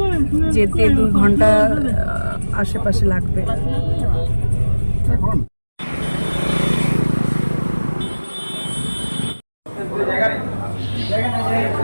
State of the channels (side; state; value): both; inverted; correlation -1.00